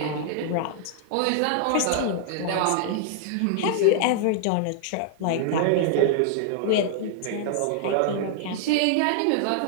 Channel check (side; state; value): both; different; correlation -0.01